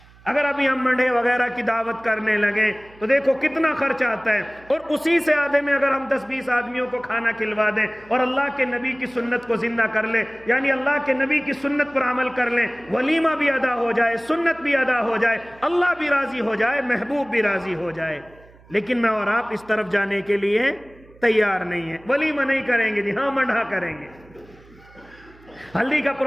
اگر ابھی ہم منڈے وغیرہ کی دعوت کرنے لگے تو دیکھو کتنا خرچ آتا ہے، اور اسی سے آدھے میں اگر ہم 10-20 آدمیوں کو کھانا کھلوا دیں اور اللہ کے نبی کی سنت کو زندہ کر لیں، یعنی اللہ کے نبی کی سنت پر عمل کر لیں، ولیمہ بھی ادا ہو جائے، سنت بھی ادا ہو جائے، اللہ بھی راضی ہو جائے، محبوب بھی راضی ہو جائے، لیکن میں اور آپ اس طرف جانے کے لیے تیار نہیں ہیں۔ ولیمہ نہیں کریں گے جی، ہاں منڈا کریں گے، ہلدی کا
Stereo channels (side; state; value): right; noise; hum, 26 dB below the sound